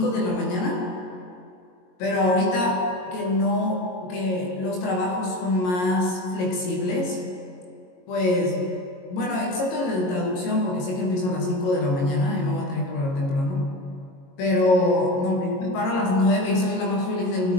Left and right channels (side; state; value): right; late; 22 ms